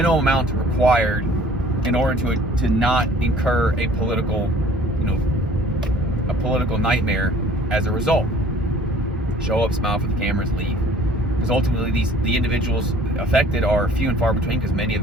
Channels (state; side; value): normal; both; correlation 0.52